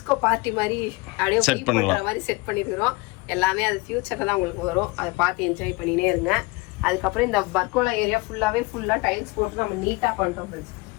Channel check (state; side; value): quieter; right; 25.0 dB